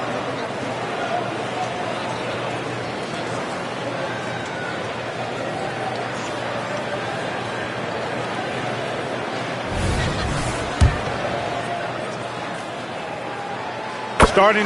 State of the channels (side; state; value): both; identical; correlation 1.00